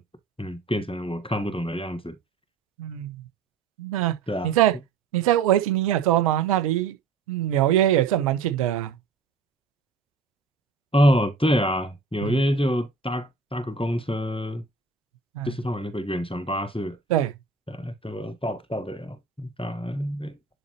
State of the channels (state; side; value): quieter; left; 4.6 dB